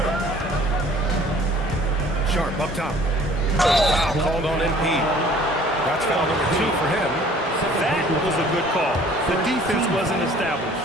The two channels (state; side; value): normal; both; correlation 0.53